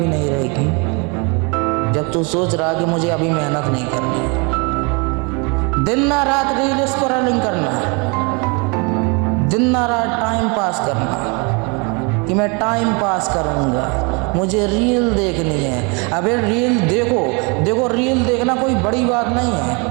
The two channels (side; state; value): left; quieter; 31.5 dB